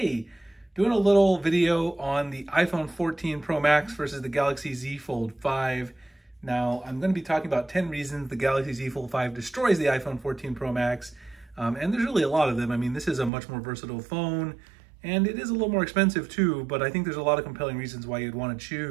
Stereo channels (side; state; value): left; drops out; at 13.3 s